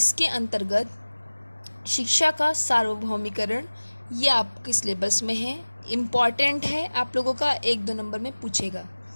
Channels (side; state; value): both; inverted; correlation -1.00